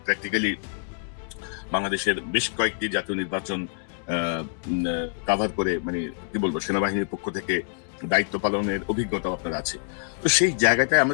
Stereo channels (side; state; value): right; silent; digital silence